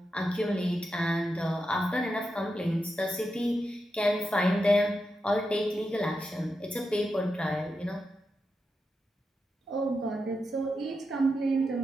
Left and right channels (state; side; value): normal; both; correlation 0.87